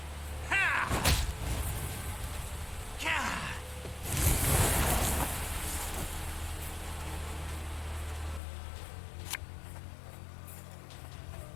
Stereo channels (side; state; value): right; drops out; at 8.4 s